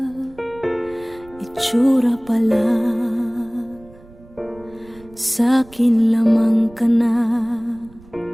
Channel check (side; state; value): right; noise; rumble, 24 dB below the sound